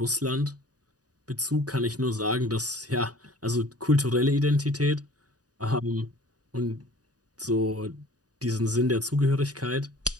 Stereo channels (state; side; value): late; left; 0.68 ms